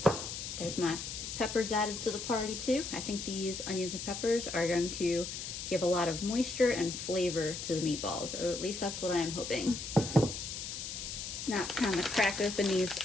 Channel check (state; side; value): noise; left; hiss, 6 dB below the sound